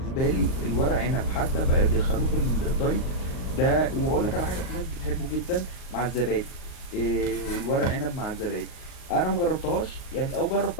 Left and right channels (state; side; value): late; right; 38 ms